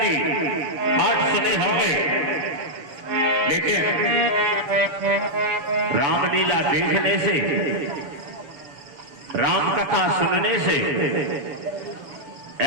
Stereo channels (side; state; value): left; late; 7.0 ms